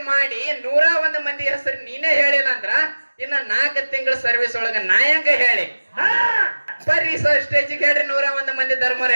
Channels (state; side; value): inverted; both; correlation -1.00